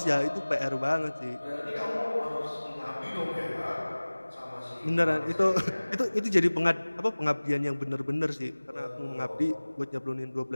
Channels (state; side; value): inverted; both; correlation -1.00